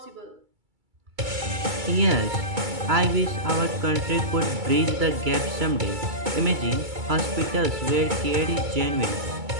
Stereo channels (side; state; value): left; late; 2.3 ms